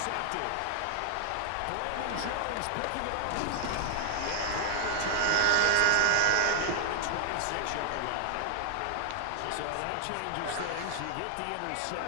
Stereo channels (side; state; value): both; different; correlation 0.00